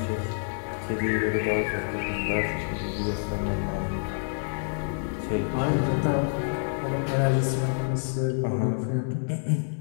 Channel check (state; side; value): silent; right; digital silence